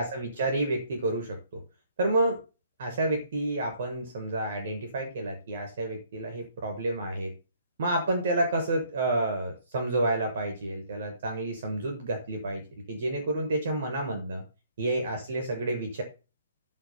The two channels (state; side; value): inverted; both; correlation -0.64